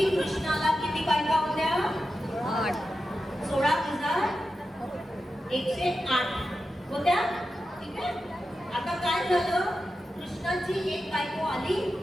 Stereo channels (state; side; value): normal; both; correlation 0.90